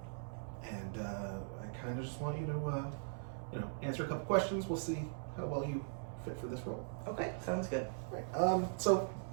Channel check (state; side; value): silent; left; 51 dB below the other